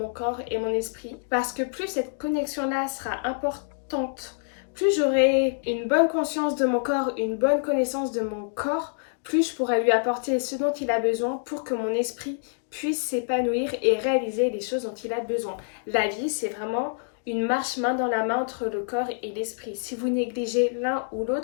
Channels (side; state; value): right; silent; digital silence